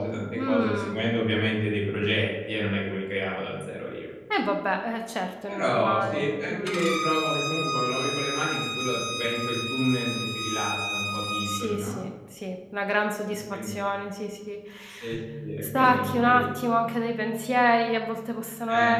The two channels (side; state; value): both; identical; correlation 1.00